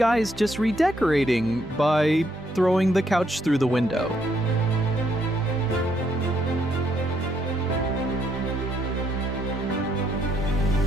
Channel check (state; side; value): normal; both; correlation 0.73